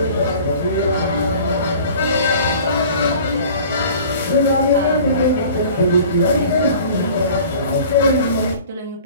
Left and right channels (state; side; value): inverted; both; correlation -0.46